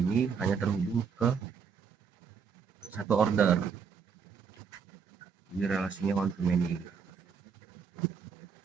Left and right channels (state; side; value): quieter; left; 6.3 dB